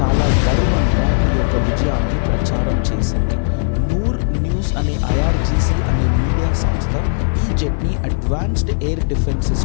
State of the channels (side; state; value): right; silent; 59 dB below the other